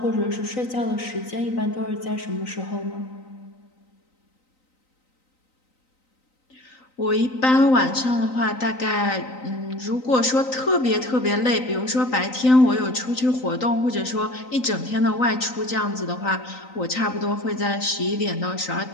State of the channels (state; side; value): late; right; 3.9 ms